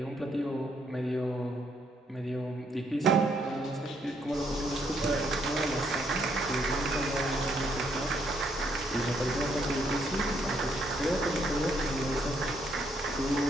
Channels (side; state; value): both; normal; correlation 0.72